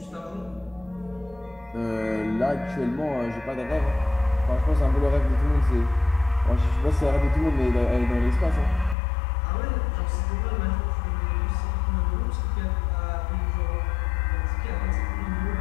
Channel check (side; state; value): right; drops out; at 9.0 s